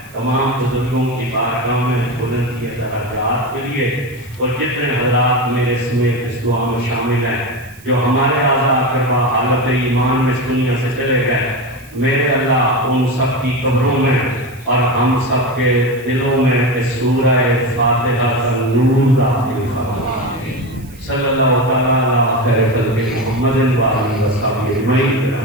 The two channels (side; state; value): right; noise; hiss, 24 dB below the sound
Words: تمام بزرگوں کی بارگاہ میں بلند کیے درجات کے لیے، اور جتنے حضرات میرے سمیت اس دعا میں شامل ہیں جو ہمارے اعضاء کروا حالت ایمان میں اس دنیا سے چلے گئے، میرے اللہ ان سب کی قبروں میں اور ہم سب کے دلوں میں اس سورہ فاتحہ کا نور داخل فرما۔ صلی اللہ تعالیٰ علی خیر خلق محمد وآلہ وصحبہ اجمعین